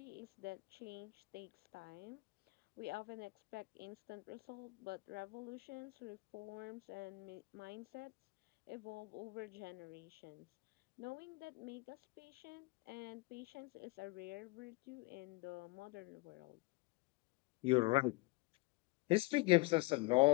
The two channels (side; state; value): right; quieter; 23.9 dB